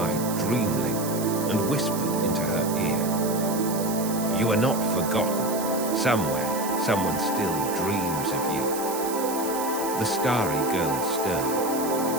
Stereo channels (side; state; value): right; noise; hiss, 9 dB below the sound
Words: Dreamling and whispered into her ear. You are not forgotten. Somewhere, someone still dreams of you. The starry girl